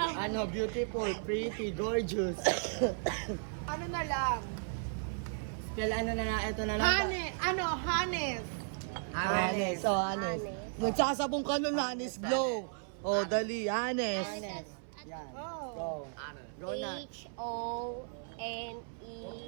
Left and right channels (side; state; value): left; silent; 54 dB below the other